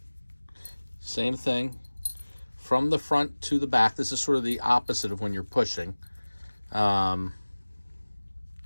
Same thing from the front to the back. This is sort of the opposite of when you're pushing.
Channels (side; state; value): both; inverted; correlation -1.00